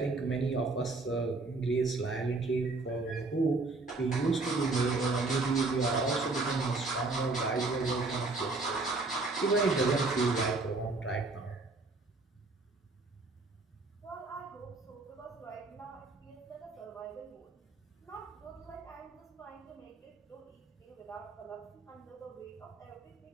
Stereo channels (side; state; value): left; quieter; 3.5 dB